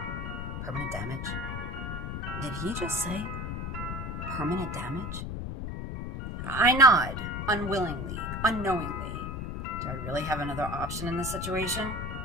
Permanent damage? Did he just say permanent damage? I nod, unwillingly, unknowingly. Do I really have another option in this situation?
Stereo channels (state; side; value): noise; left; rumble, 4 dB below the sound